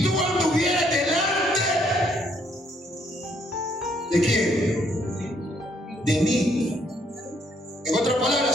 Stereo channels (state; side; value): normal; both; correlation 0.69